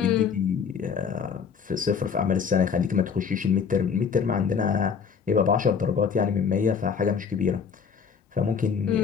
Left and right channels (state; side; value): quieter; right; 6.4 dB